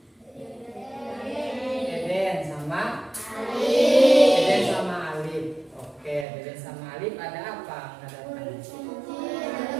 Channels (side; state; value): left; drops out; at 6.2 s